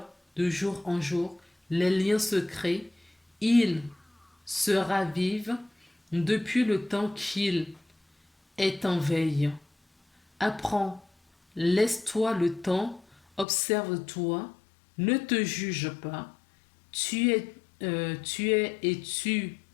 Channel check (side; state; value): right; drops out; at 13.5 s